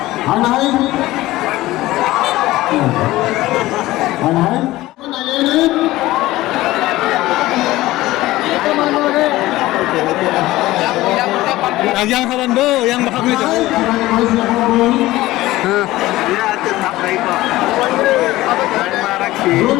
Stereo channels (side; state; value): right; quieter; 17.3 dB